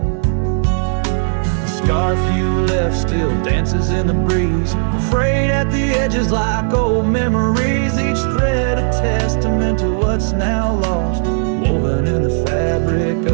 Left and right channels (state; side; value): silent; left; digital silence